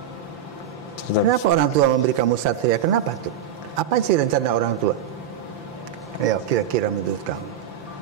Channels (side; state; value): left; quieter; 8.6 dB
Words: Kenapa orang tua memberi kamu satria? Kenapa tuh? Apa sih rencana orang tua? Ayo, kira-kira menurut kamu.